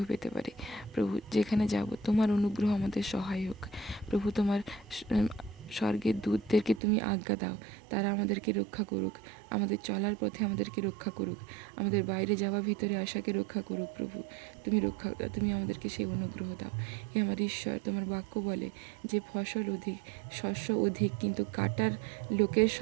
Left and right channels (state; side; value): drops out; left; at 6.8 s